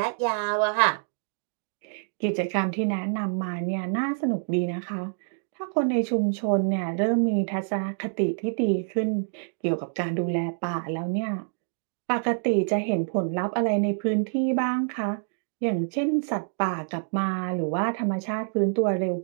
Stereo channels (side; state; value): left; silent; digital silence